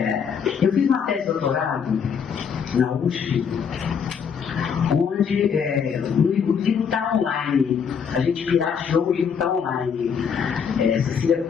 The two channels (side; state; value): right; quieter; 6.8 dB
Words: Eu fiz uma tese de doutorado na USP, onde o livro está online, a gente pirateou, o livro está online. Cecília